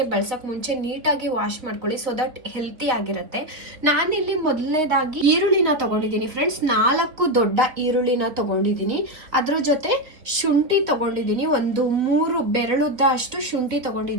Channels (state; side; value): late; left; 3.7 ms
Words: ಬಳಸೋಕೆ ಮುಂಚೆ ನೀಟಾಗಿ ವಾಶ್ ಮಾಡ್ಕೊಳ್ಳಿ, ಸೊ ದಟ್ ಹೆಲ್ತಿ ಆಗಿರುತ್ತೆ. ನಾನಿಲ್ಲಿ ಮೊದಲನೇದಾಗಿ ಈರುಳ್ಳಿನ ತಗೊಂಡಿದ್ದೀನಿ ಫ್ರೆಂಡ್ಸ್. 4 ದೊಡ್ಡ ಈರುಳ್ಳಿನ ತಗೊಂಡಿದ್ದೀನಿ. ಅದ್ರ ಜೊತೆ ಶುಂಠಿ ತಗೊಂಡಿದ್ದೀನಿ, ಒಂದು 3 ಬೆರಳುದ್ದ ಅಷ್ಟು ಶುಂಠಿ